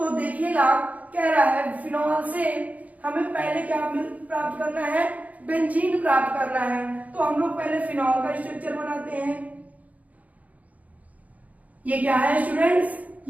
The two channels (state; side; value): late; left; 0.073 ms